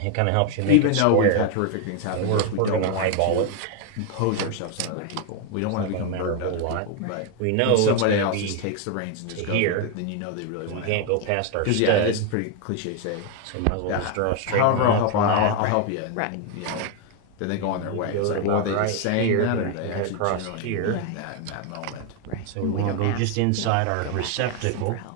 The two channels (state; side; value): different; both; correlation 0.01